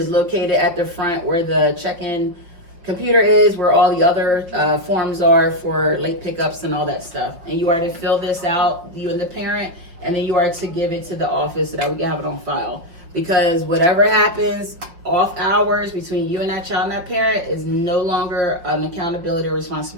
located at the front where the check-in computer is, where all the other forms are for late pickups and all that stuff. And you are to fill this out, you and the parent, and then you are to give it to the office so that we can have it on file. Because whatever happens off hours between you and that child and that parent is no longer an accountability or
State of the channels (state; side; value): late; left; 5.8 ms